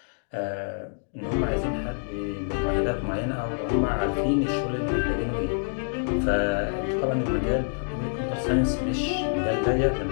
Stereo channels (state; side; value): silent; right; digital silence